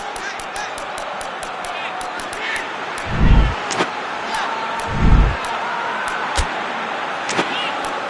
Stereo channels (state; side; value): identical; both; correlation 1.00